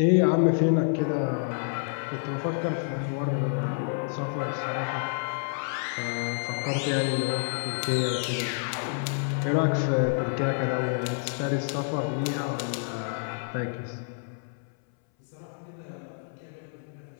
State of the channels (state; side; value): silent; right; 59 dB below the other